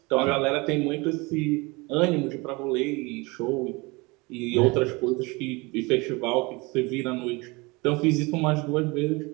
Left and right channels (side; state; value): left; quieter; 25.4 dB